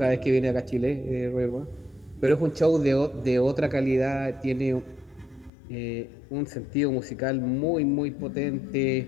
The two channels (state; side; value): drops out; right; at 5.5 s